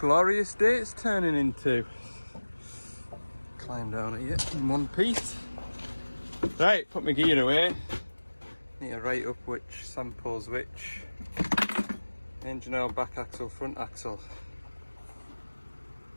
day it's turning into. Climb down at you in one piece. Right, put my gear away. Need to write up which samples which. Engine oil, back axle, front axle.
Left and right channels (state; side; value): inverted; both; correlation -1.00